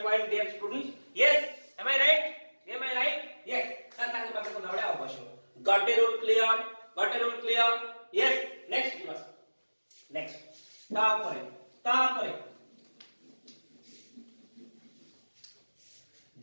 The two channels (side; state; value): both; inverted; correlation -1.00